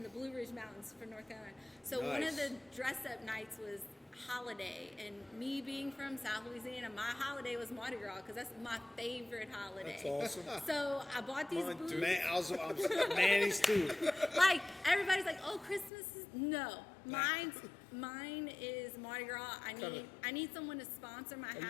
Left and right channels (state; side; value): drops out; right; at 15.9 s